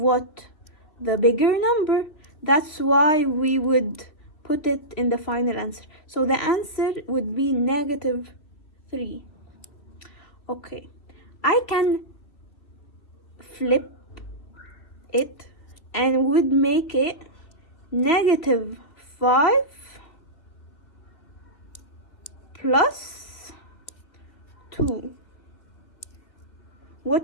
The bigger number. That's why we would put it in the final answer. So the answer would be -3. Okay, I can flip it and would make it -5 plus 2.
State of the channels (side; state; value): right; late; 2.5 ms